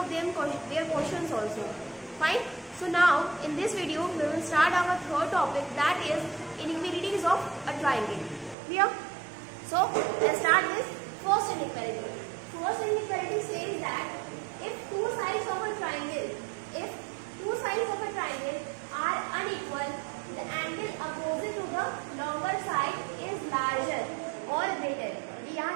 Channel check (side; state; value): left; drops out; at 8.6 s